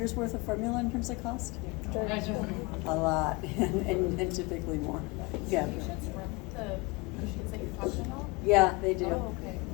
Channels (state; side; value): quieter; right; 25.5 dB